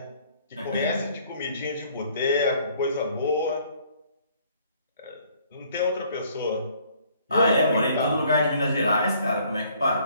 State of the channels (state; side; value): inverted; both; correlation -0.61